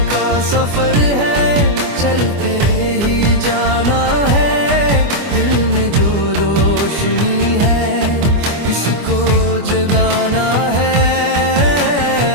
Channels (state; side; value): late; left; 24 ms